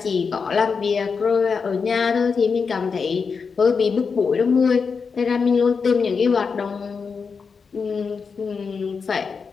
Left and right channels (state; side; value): quieter; right; 5.4 dB